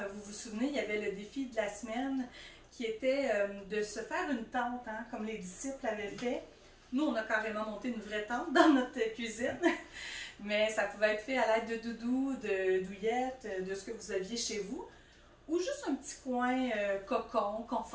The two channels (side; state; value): both; identical; correlation 1.00